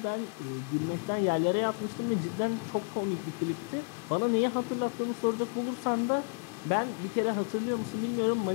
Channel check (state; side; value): quieter; right; 35.8 dB